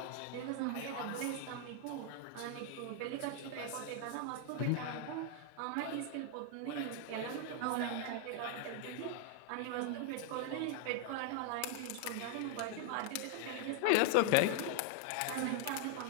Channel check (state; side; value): different; both; correlation 0.00